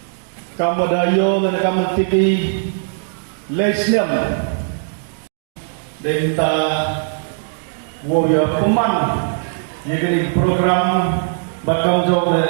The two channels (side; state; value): left; silent; digital silence